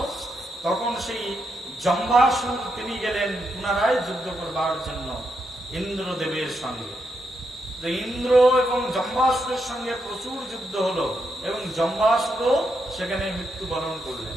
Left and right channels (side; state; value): both; normal; correlation 0.81